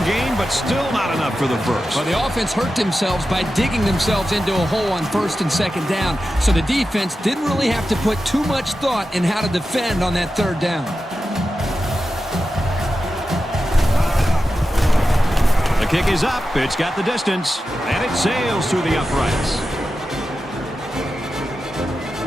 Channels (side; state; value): both; normal; correlation 0.92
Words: gain, but still not enough for the first. Well, the offense hurt themselves by digging themselves into a hole on first and second down, so the defense didn't really have to put too much thought in how to defend on that third down. The kick is up. It's got the distance, and it sails through the uprights.